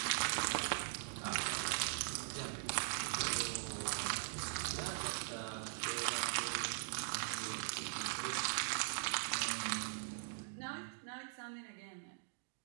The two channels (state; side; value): silent; left; digital silence